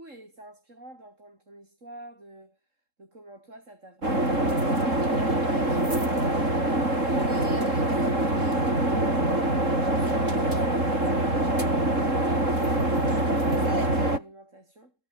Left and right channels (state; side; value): late; left; 3.7 ms